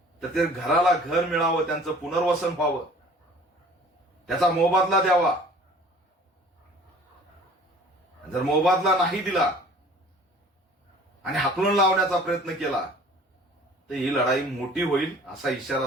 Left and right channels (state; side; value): normal; both; correlation 0.49